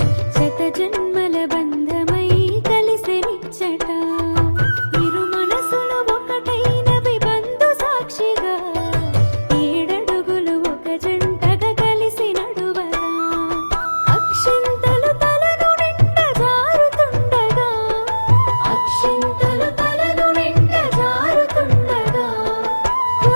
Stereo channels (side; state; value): both; inverted; correlation -1.00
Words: శత జన్మల బంధమై కలిసెనిచ్చట ఇరు మనసులు ఒకటైనవి బంధు సాక్షిగా ఏడడుగులు ఒక జంటగా కలిసి నడువగా అక్షింతలు తలను నిండ జారుతుండగా అక్షింతలు తలను నిండ జారుతుండగా